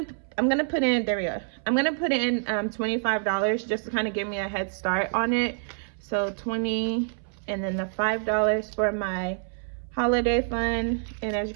put in, there we go. I'm gonna put in $25 just to kind of give me a head start on it. So 20, and then the $5 for my holiday fund. And as you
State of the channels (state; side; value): silent; left; 60 dB below the other